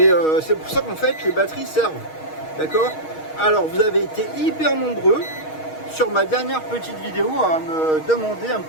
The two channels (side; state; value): right; late; 6.4 ms